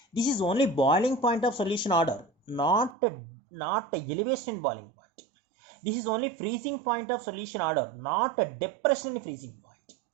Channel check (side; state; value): left; drops out; at 3.0 s